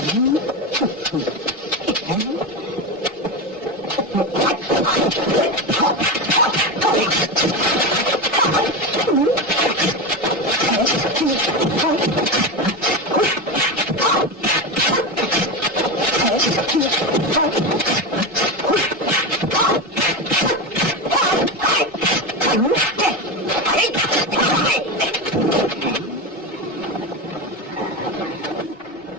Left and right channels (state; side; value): normal; both; correlation 0.17